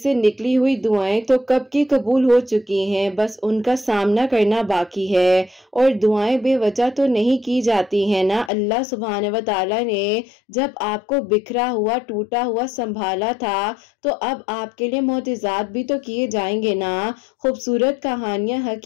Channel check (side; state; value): right; drops out; at 8.5 s